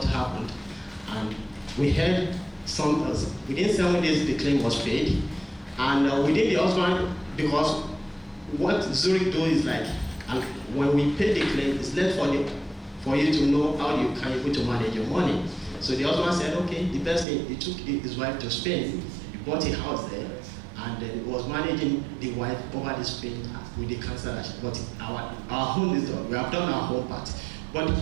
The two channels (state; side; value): drops out; left; at 17.2 s